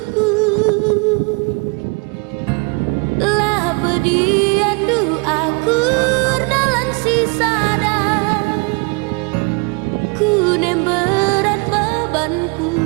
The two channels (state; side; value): quieter; left; 31.8 dB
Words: Lah bediandu aku dalam sisada, ku nem berat bebanku.